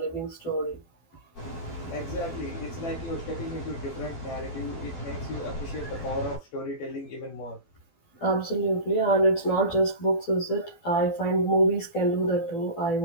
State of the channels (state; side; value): late; right; 12 ms